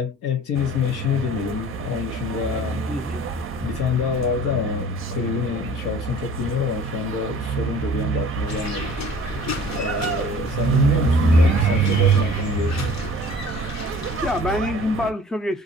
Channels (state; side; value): normal; both; correlation 0.47